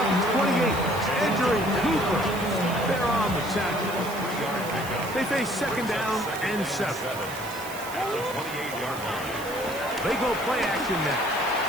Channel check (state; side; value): noise; right; hiss, 14 dB below the sound